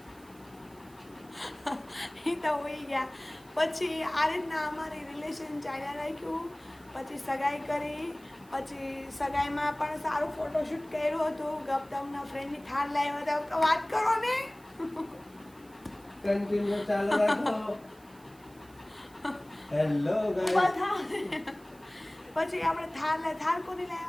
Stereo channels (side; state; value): right; noise; hiss, 26 dB below the sound